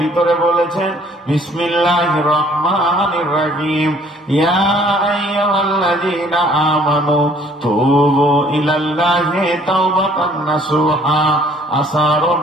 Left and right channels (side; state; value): both; normal; correlation 0.59